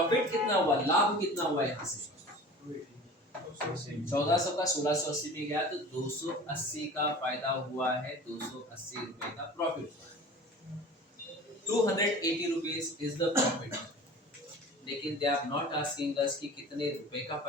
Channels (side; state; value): both; normal; correlation 0.40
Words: कितना हुआ? लाभ कितना हुआ? यहाँ से 1400 का 1680 में गया तो 280 का फायदा हुआ है, 280 रुपए का प्रॉफिट हुआ है। 280 रुपीस इज द प्रॉफिट। लेकिन they are not asking us कि कितने रुपए का